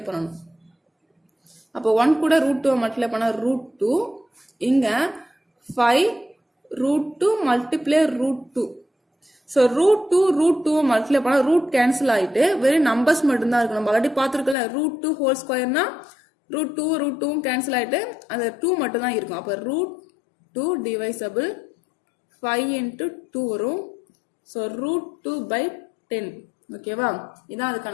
பண்ணணும். அப்போ 1 கூட √2 மல்டிப்ளை பண்ணா √2. இங்க 5√2 மல்டிப்ளை √2. ஸோ √2 மல்டிப்ளை பண்ணா ரூட் கேன்சல் ஆயிட்டு வெறும் நம்பர்ஸ் மட்டும்தான் இருக்கு. நம்ம ஆல்ரெடி பார்த்துருக்கல √2 ஹோல் ஸ்கொயர்னா √2 கேன்சல் ஆயிட்டு அந்த 2 மட்டும் தான் இருக்கும். அப்போ √2 divisible 5 into 2 வரும். ஸோ √2/10. ஓகேவா. இதான்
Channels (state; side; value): drops out; right; at 14.6 s